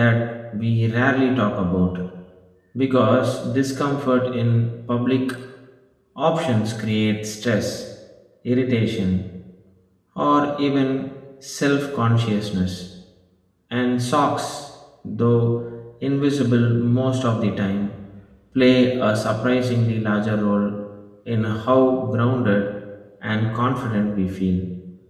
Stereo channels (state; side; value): identical; both; correlation 1.00